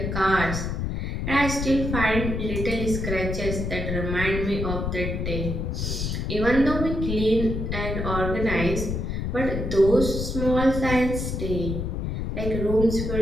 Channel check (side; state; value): left; noise; rumble, 2 dB below the sound